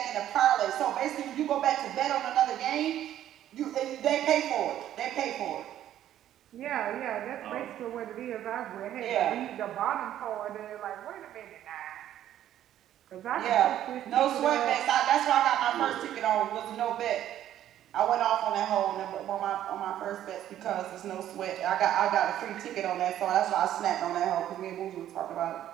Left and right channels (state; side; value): quieter; left; 11.8 dB